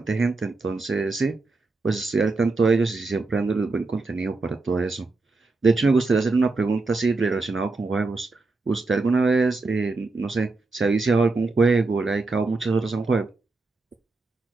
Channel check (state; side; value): quieter; left; 3.6 dB